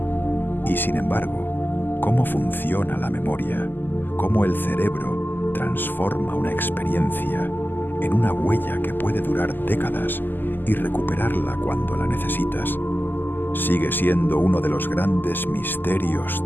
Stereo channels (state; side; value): late; right; 0.090 ms